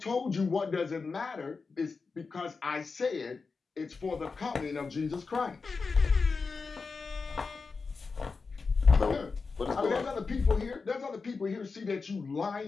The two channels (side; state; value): right; quieter; 4.6 dB